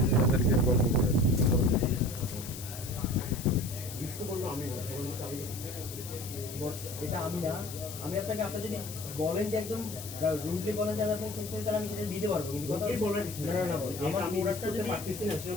গল্প করে এটা আমি না, আমি আপনাকে আপনার যদি বলেন যে একদম রুডলি বলেন যে আমি আপনাকে চেঞ্জ করি, তাহলে আমি সেটা দিতে পারবো। কিন্তু কথা না না বল, আমার প্রোডাক্টটা যদি পারতেছি না,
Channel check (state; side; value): noise; left; hiss, 11 dB below the sound